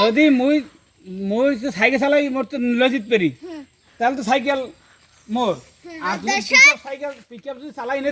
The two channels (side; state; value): both; identical; correlation 1.00